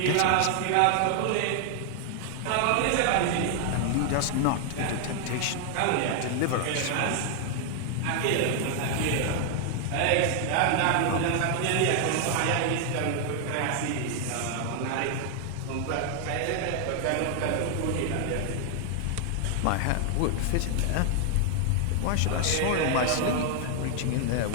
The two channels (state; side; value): different; both; correlation 0.00